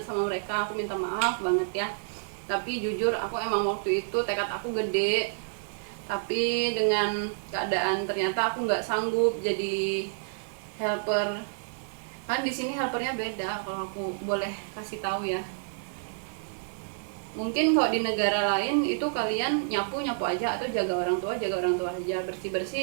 sama mereka, aku minta maaf banget ya. Tapi jujur aku emang waktu itu tekad aku gede, tapi dengan keadaan ternyata aku nggak sanggup jadi helper. Kan di sini helpernya beda, kalau aku boleh kasih tahu ya. Mungkin kalau di negara lain itu kalian nyapu aja, atau jaga orang tua aja, bersih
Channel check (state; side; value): silent; left; digital silence